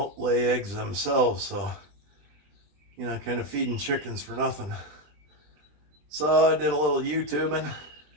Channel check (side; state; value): left; late; 20 ms